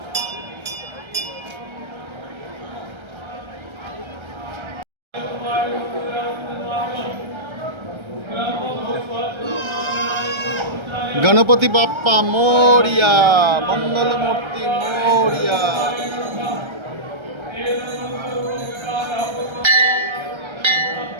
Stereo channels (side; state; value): left; late; 1.3 ms